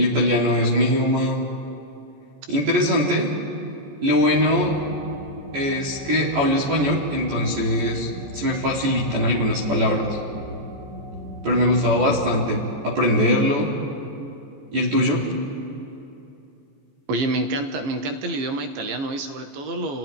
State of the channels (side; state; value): left; late; 14 ms